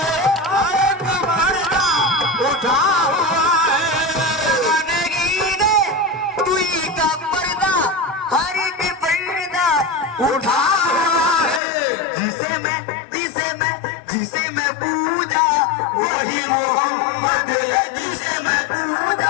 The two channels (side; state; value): right; drops out; at 11.6 s